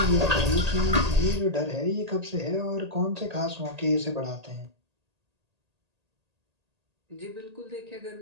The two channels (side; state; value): left; late; 1.8 ms